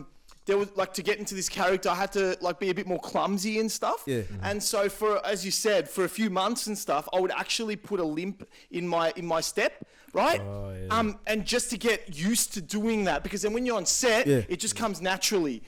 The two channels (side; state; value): both; identical; correlation 1.00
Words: there was to get into this character, I had to be a bit more clumsy and stuff. Yeah. And so as you said, for a few months and stuff, I would actually put a limp in my step, right? Oh, yeah. And just to get used to doing that, because then when you're on set, it just comes naturally.